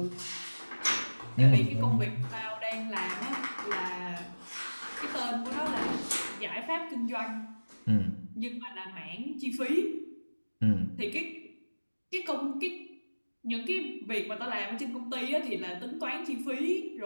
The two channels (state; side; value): inverted; both; correlation -1.00